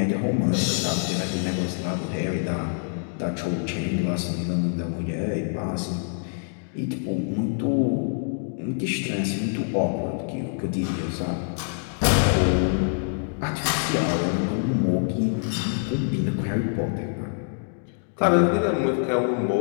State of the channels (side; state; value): right; silent; digital silence